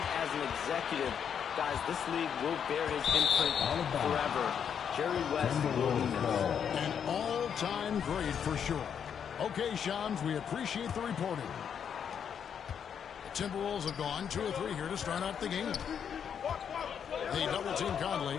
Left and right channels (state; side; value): quieter; right; 7.8 dB